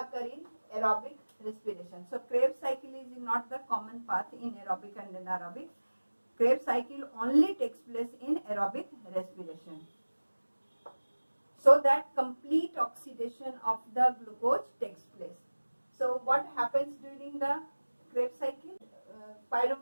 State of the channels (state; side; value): inverted; both; correlation -1.00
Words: in aerobic respiration. So, Krebs cycle is not the common path in aerobic and anaerobic. Krebs cycle only takes place in aerobic respiration, so that complete oxidation of the glucose takes place. So what happens during the Krebs cycle?